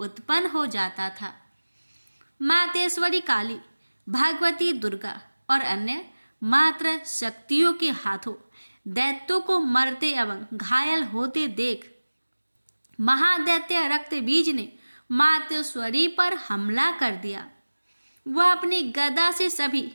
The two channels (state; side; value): inverted; both; correlation -1.00